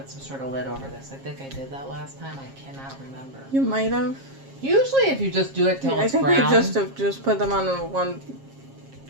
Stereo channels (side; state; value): left; late; 7.4 ms